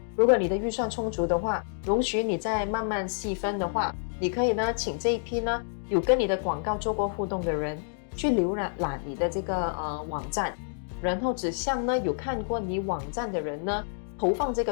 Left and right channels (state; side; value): silent; right; digital silence